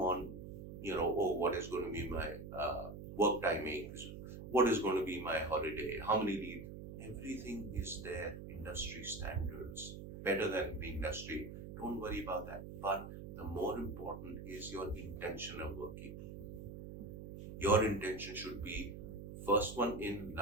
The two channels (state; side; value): noise; right; hum, 10 dB below the sound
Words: what is going to be my work timings, what is going to be my holiday, how many leave. Everything is there, industry standards, better than the industry. Don't worry about that. But the more important is your intention of working. Your intention should be first one in,